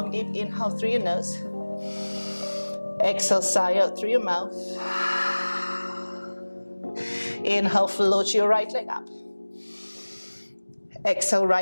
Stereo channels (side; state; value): both; inverted; correlation -1.00